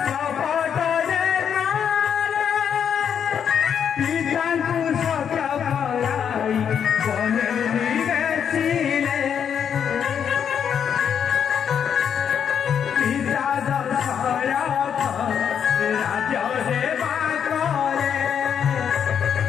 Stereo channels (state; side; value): quieter; right; 8.0 dB